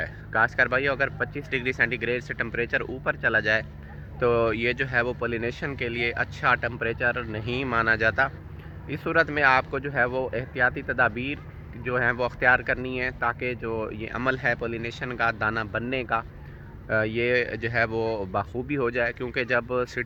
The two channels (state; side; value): identical; both; correlation 1.00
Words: کاشتکار بھائیو، اگر 25 ڈگری سینٹی گریڈ سے ٹمپریچر اوپر چلا جائے تو یہ جو ہے وہ پولینیشن کے لیے اچھا ٹمپریچر نہیں مانا جاتا۔ اس صورت میں آپ کو جو ہے وہ احتیاطی تدابیر جو ہیں وہ اختیار کرنی ہے، تاکہ جو یہ عمل ہے پولینیشن کا دانہ بننے کا، یہ جو ہے وہ بخوبی ہو جائے، کیونکہ جب